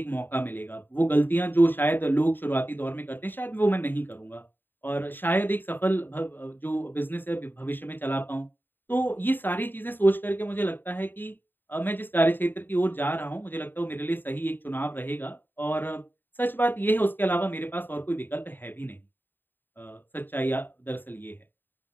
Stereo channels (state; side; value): late; right; 0.093 ms